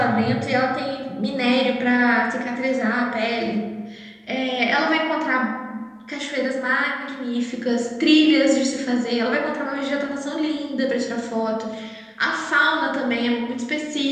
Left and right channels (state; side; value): identical; both; correlation 1.00